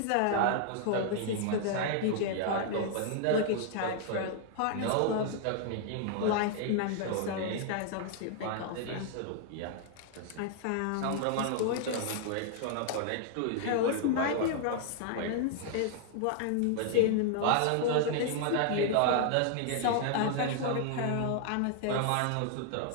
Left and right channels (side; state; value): both; different; correlation 0.00